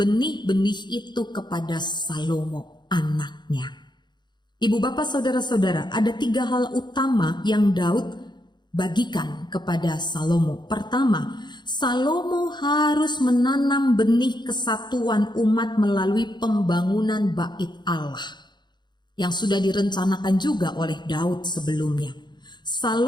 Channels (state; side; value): late; right; 0.21 ms